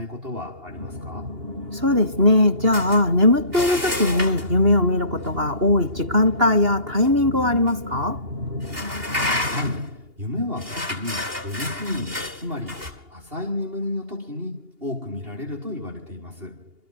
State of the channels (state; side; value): late; left; 2.8 ms